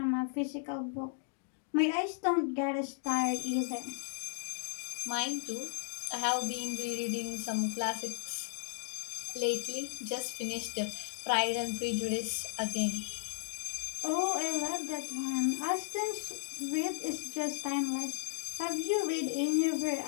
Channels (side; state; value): right; silent; digital silence